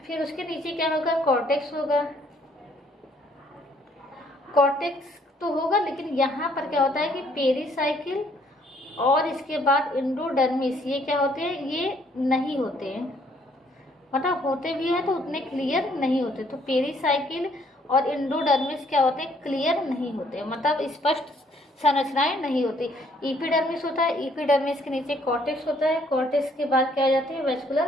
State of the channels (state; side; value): normal; both; correlation 0.65